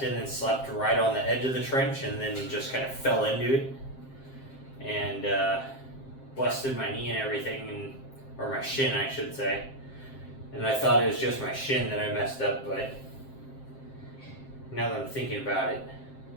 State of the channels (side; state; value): right; late; 7.6 ms